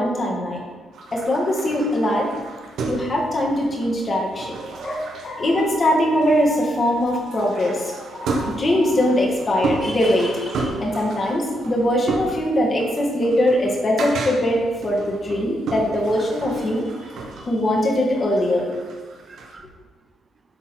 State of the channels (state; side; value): normal; both; correlation 0.80